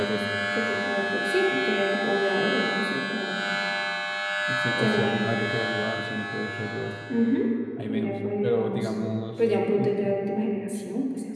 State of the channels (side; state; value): both; identical; correlation 1.00